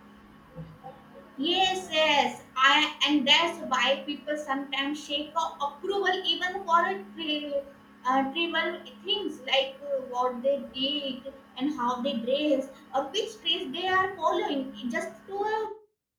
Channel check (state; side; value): identical; both; correlation 1.00